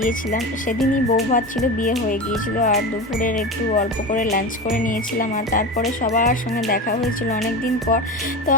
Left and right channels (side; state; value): both; normal; correlation 0.25